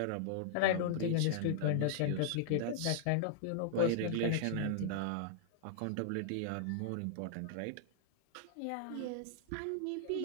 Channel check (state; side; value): different; both; correlation -0.01